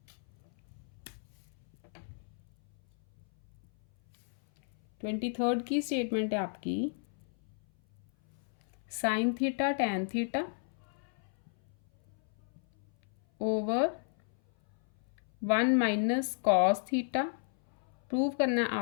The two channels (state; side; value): silent; right; 55 dB below the other